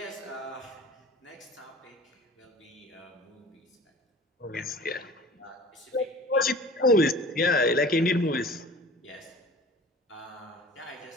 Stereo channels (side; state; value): both; normal; correlation 0.42